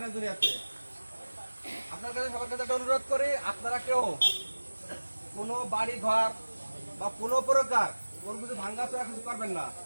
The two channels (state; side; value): inverted; both; correlation -1.00